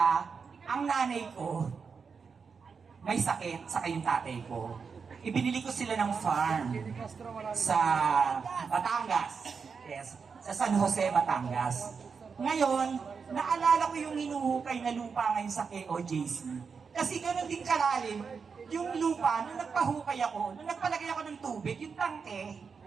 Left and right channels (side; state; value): left; quieter; 5.6 dB